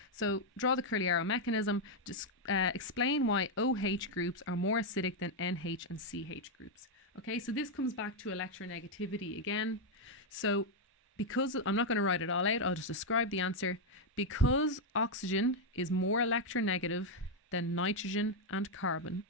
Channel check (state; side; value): normal; both; correlation 0.01